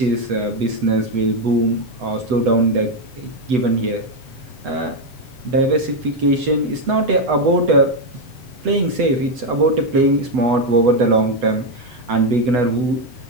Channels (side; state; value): left; late; 8.1 ms